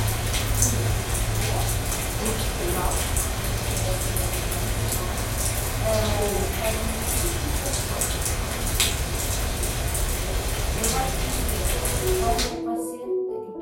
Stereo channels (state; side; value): identical; both; correlation 1.00